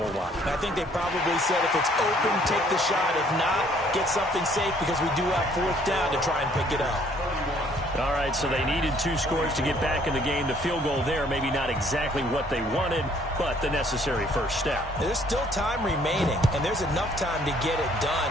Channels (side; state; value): both; normal; correlation 0.62